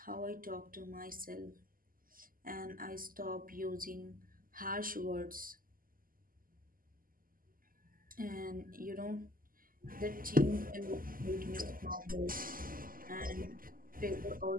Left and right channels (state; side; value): late; left; 0.41 ms